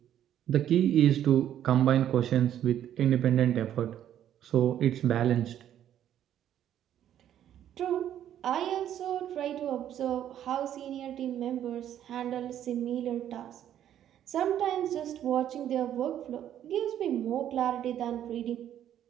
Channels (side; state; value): left; quieter; 10.8 dB